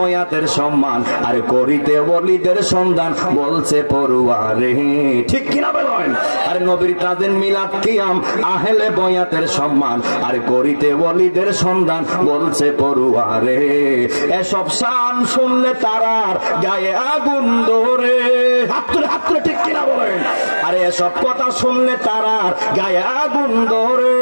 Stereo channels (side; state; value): both; inverted; correlation -1.00